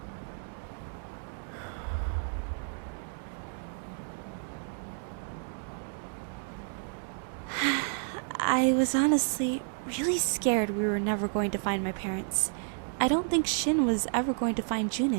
I was honestly really scared we were never going to find my parents. I don't think Shin was ever going to find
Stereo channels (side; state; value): left; silent; 57 dB below the other